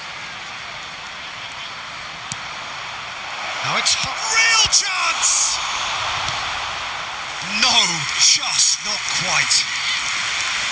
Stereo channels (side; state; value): both; identical; correlation 1.00